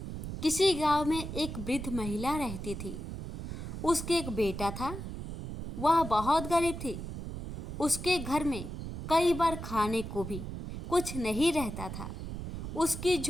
किसी गांव में एक वृद्ध महिला रहती थी। उसके एक बेटा था। वह बहुत गरीब थी। उसके घर में कई बार खाने को भी कुछ नहीं रहता था। उसकी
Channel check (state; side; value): noise; right; rumble, 7 dB below the sound